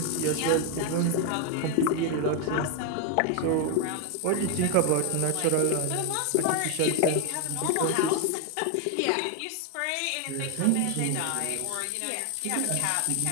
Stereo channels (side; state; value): both; different; correlation 0.01